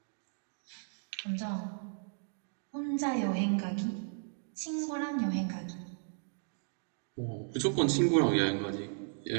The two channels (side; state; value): left; silent; digital silence